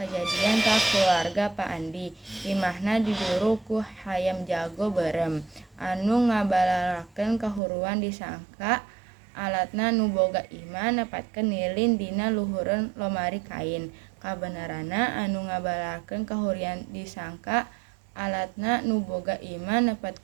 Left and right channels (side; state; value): left; drops out; at 7.6 s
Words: ka keluarga Pak Andi. Imahna diduru ku hayam jago berem anu ngabalarakeun kahuruan disangka alatna nu boga imah nepatkeun lilin dina luhureun lomari kain. Kabenerana anu ngabalarakeun kahurian disangka alatna nu boga imah